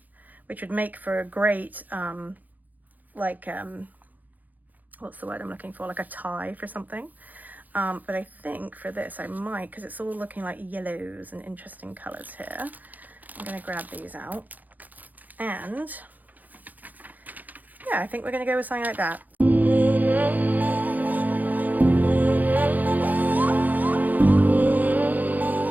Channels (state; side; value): late; left; 0.082 ms